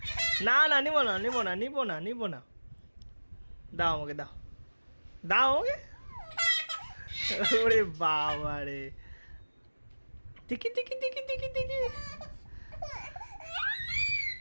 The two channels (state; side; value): inverted; both; correlation -1.00